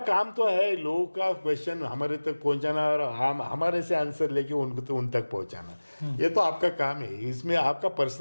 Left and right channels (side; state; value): both; inverted; correlation -1.00